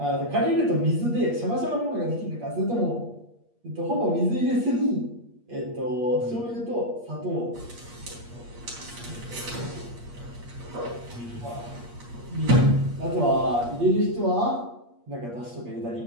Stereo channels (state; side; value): late; left; 8.5 ms